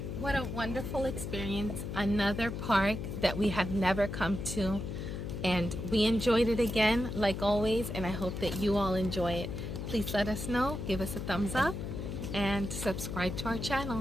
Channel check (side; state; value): left; noise; hum, 5 dB below the sound